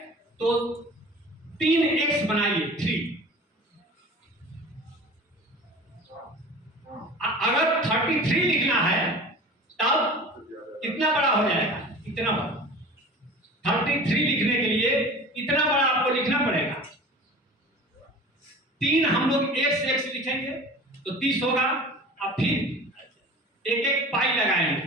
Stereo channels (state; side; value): normal; both; correlation 0.39